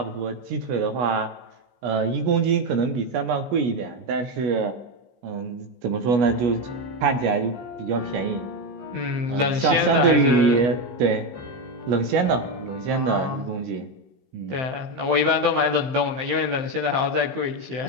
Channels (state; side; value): late; left; 15 ms